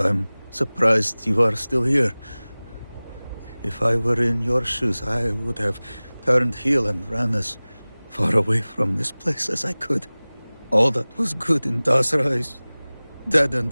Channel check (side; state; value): both; inverted; correlation -0.99